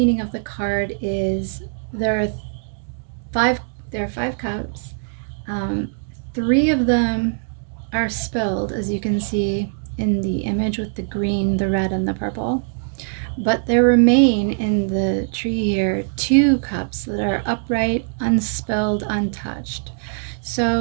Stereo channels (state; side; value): silent; left; digital silence